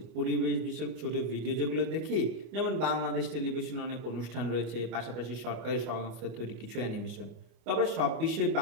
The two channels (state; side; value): late; left; 25 ms